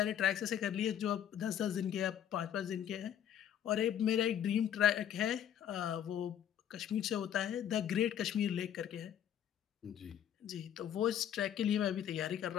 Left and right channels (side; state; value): right; quieter; 9.9 dB